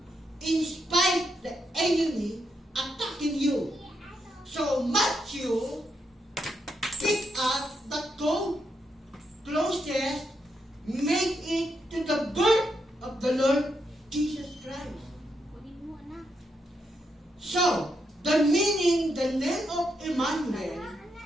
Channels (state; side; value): normal; both; correlation 0.81